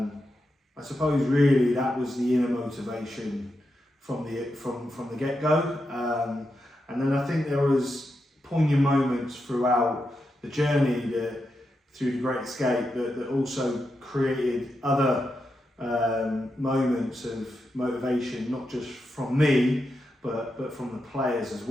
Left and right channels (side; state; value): both; normal; correlation 0.86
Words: suppose really that was the inner motivation from the get-go. And then I think there was poignant moments throughout the journey through the Great Escape that also created other moments of motivation, not just from me, but from the players as